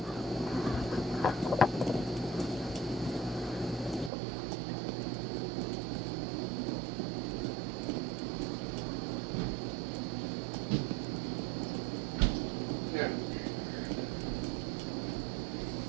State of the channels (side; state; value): left; drops out; at 4.1 s